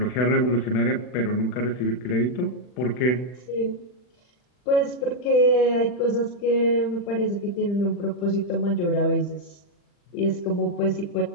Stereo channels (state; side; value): late; right; 40 ms